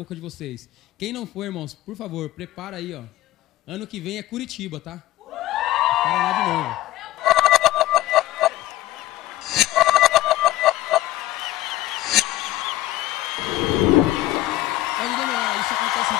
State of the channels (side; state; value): right; quieter; 15.7 dB